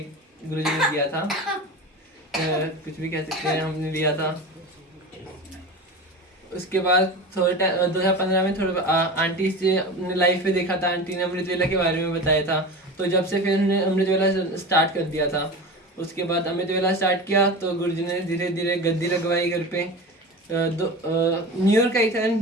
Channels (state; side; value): normal; both; correlation 0.30